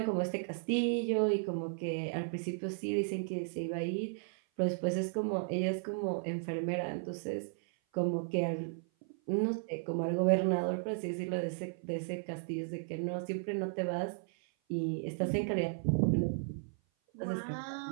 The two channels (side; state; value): left; silent; 54 dB below the other